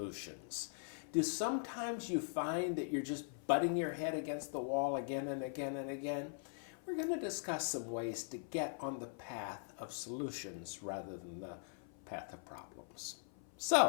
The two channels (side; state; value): right; silent; 50 dB below the other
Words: Do sometimes you find that you're just butting your head against the wall again and again and again? We're going to discuss some ways to get on the path of solutions rather than the path of problems.